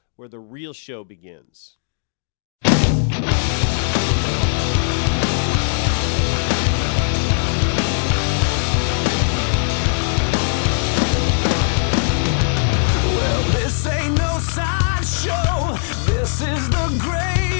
where the real show begins. Well, this ain't no sideshow. This is the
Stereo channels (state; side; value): silent; right; digital silence